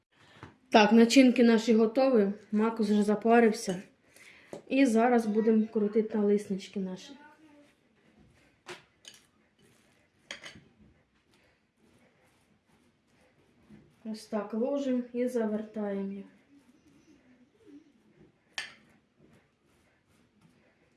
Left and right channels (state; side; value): identical; both; correlation 1.00